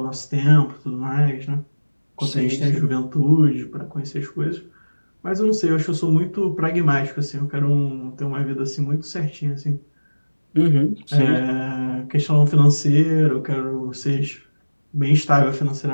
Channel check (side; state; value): both; inverted; correlation -1.00